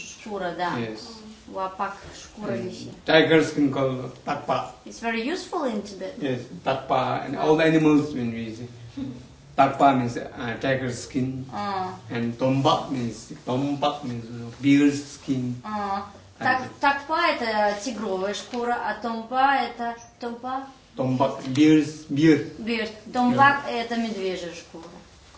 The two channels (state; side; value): identical; both; correlation 1.00